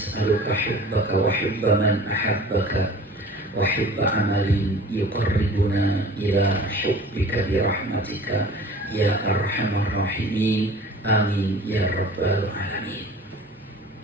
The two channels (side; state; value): both; normal; correlation 0.43